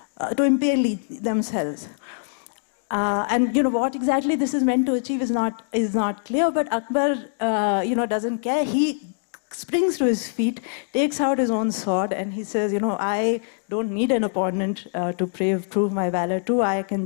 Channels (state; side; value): silent; right; digital silence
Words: to impale themselves. And what exactly this is meant to achieve is not clear, but Akbar, doesn't care. He springs to his feet, takes out his own sword, and he says, I don't need an opponent to prove my valor to. I can